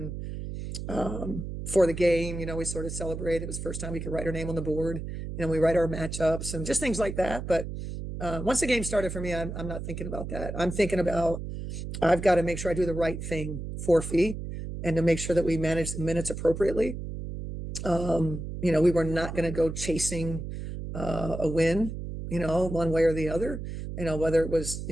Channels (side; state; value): right; noise; hum, 7 dB below the sound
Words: for the game, we sort of celebrated. It was the first time we could write her name on the board. We write our matchups and just things like that. But once the game started for me, I'm not thinking about that. I'm thinking about I've got to make sure I do the right thing for Fee and to make sure that we manage the minutes appropriately. We were not going to go chasing a win, one way or the other, whether it was,